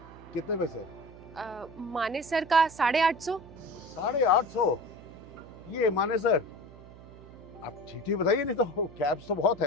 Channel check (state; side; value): noise; right; hum, 18 dB below the sound